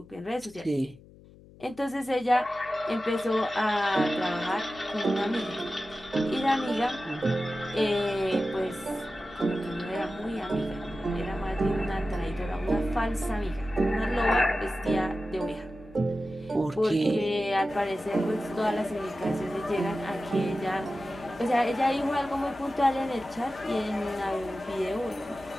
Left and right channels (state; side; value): noise; left; hum, 22 dB below the sound